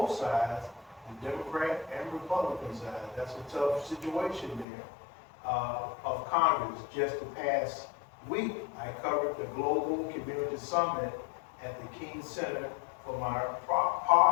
sides, the Democrat and Republican side. That's a tough situation there. Of Congress. Just the past week, I covered the Global Community Summit at the King Center for my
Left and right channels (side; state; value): right; drops out; at 4.7 s